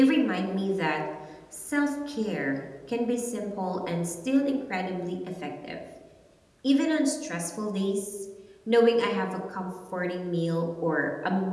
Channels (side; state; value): both; identical; correlation 1.00